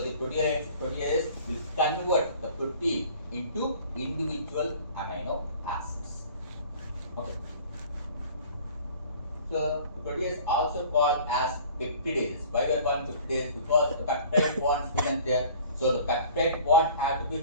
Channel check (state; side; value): inverted; both; correlation -0.48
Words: the proteases will convert the protein into individual amino acids. Okay. So protease also called as peptidases. Why we are calling peptidases? Because the peptide bonds present there. So the peptide bond had to be